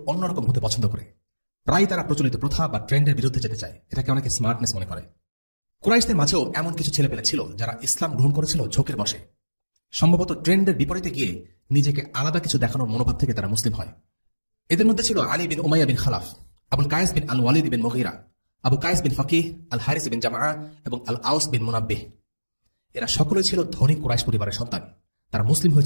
অন্যরকম হতে পছন্দ করে। প্রায় তারা প্রচলিত প্রথা বা ট্রেন্ডের বিরুদ্ধে যেতে চায়। এটাকে অনেকে স্মার্টনেস মনে করে। কুরাইশদের মাঝেও এমন কিছু ছেলেপেলে ছিল যারা ইসলাম গ্রহণ করেছিল ঝোঁকের বশে। সম্ভবত ট্রেন্ডের বিপরীতে গিয়ে নিজেকে আলাদা কিছু দেখানোর মনোভাব থেকে তারা মুসলিম হয়। এদের মধ্যে ছিল আলী বিন উমাইয়া বিন খালাফ, আবুল কায়েস বিন আল ওয়ালিদ বিন মুগীরা, আবু কায়েস বিন ফাকিহ, আল হারিস বিন জামআ এবং আল আউস বিন মুনাব্বিহ। এরা সকলেই ছিল ধনী কুরাইশ পরিবারের সন্তান। তারা মুসলিম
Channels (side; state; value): both; inverted; correlation -1.00